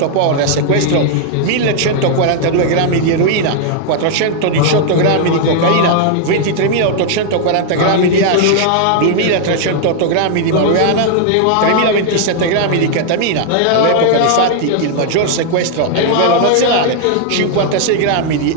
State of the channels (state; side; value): different; both; correlation 0.00